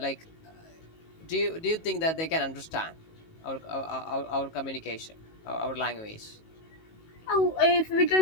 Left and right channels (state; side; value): late; right; 19 ms